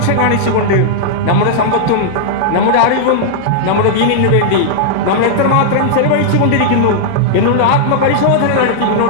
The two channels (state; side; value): different; both; correlation -0.02